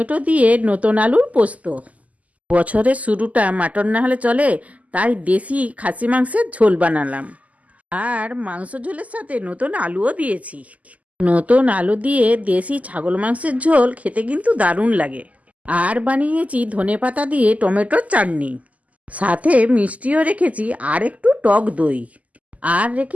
দিয়ে নতুন আলুর পোস্ত। বছরের শুরুটা মাটন না হলে চলে, তাই দেশি খাসি মাংসের ঝোল বানালাম। আর মাংস ঝোলের সাথে নতুন আলুও দিয়েছি। নতুন আলু দিয়ে দেশি ছাগল মাংসের ঝোল খেতে কিন্তু দারুণ লাগে। আর বানিয়েছি ধনেপাতা দিয়ে টমেটোর চাটনি, সাথে মিষ্টিও রেখেছি আর একটু টক দই, আর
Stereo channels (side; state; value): left; late; 0.073 ms